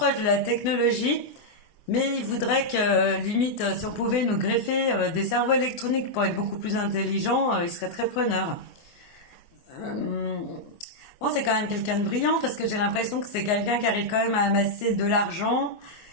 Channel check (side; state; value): right; late; 24 ms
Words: de la technologie, mais il voudrait que limite, si on pouvait nous greffer des cerveaux électroniques pour être beaucoup plus intelligents, il serait très preneur. Euh, Bon, c'est quand même quelqu'un de brillant parce que j'ai l'impression que c'est quelqu'un qui arrive quand même à amasser de l'argent,